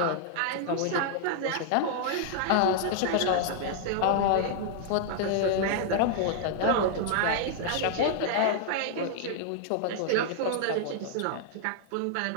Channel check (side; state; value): both; different; correlation -0.01